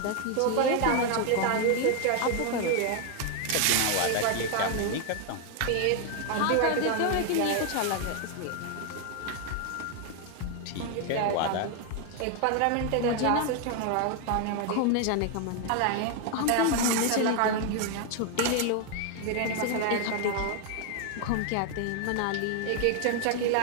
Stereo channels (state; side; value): different; both; correlation 0.00